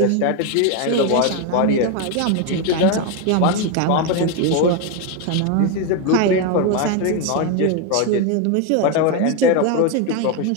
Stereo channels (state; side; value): different; both; correlation 0.02